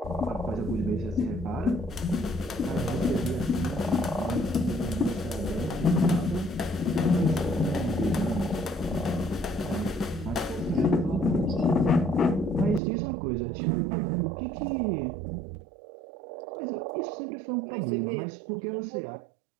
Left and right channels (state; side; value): drops out; left; at 12.8 s